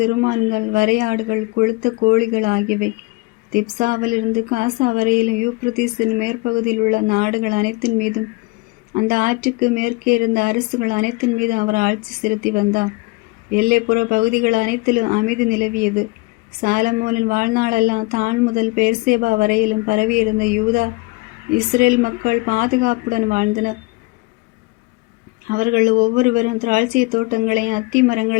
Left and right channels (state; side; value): quieter; right; 24.6 dB